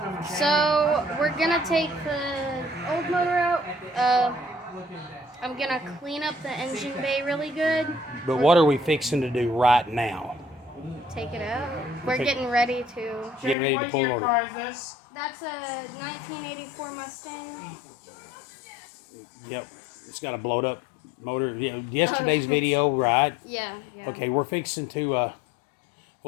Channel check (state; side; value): drops out; right; at 13.6 s